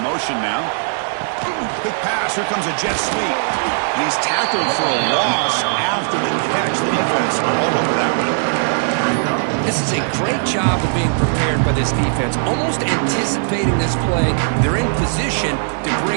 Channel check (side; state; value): left; silent; digital silence